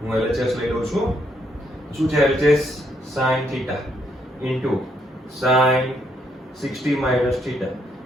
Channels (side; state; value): both; normal; correlation 0.74